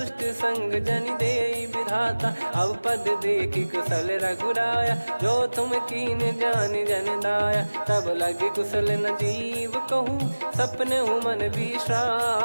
संग जन दे विधाता, अब पद देखी कुशल रघुराया। जो तुम कीन जान जन दाया, तब लगे कुशल न जीव कहूँ। सपने मन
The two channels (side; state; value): both; inverted; correlation -1.00